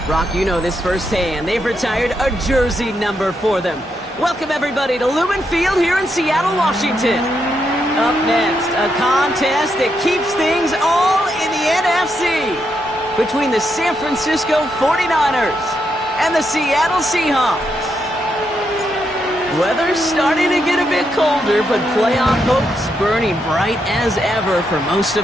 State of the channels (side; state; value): both; normal; correlation 0.81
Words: Brock, you know this firsthand. They've retired a jersey number for them. Welcome, everybody, to Lumen Field here in Seattle, Washington. Up next, a contest that keeps things all in the NFC between the San Francisco 49ers and the Seattle Seahawks. Weather's starting to get a bit colder, but playoff hopes burning bright as ever for most